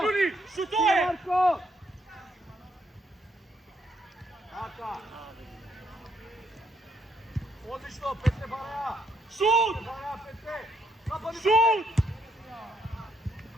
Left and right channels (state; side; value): normal; both; correlation 0.73